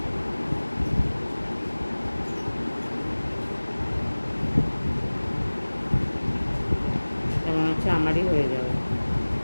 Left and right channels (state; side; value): inverted; both; correlation -1.00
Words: মনে হচ্ছে আমারই হয়ে যাবে।